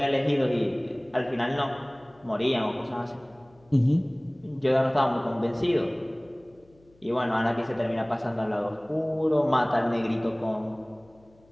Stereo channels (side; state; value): left; noise; hum, 30 dB below the sound